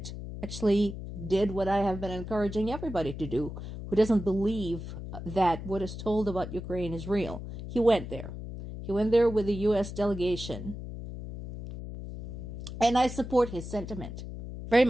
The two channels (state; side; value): noise; left; hum, 9 dB below the sound